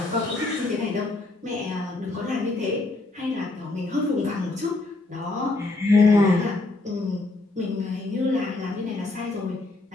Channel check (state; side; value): quieter; right; 3.1 dB